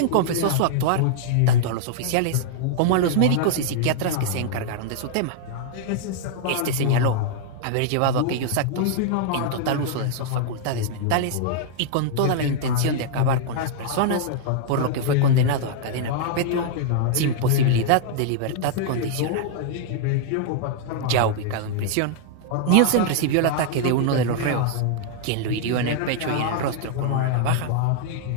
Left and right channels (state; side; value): different; both; correlation -0.01